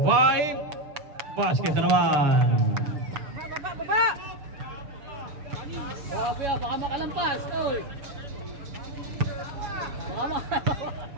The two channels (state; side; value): late; left; 6.8 ms